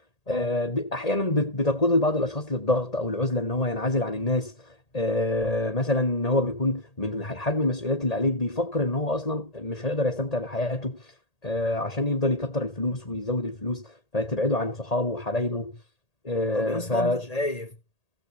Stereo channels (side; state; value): right; late; 1.8 ms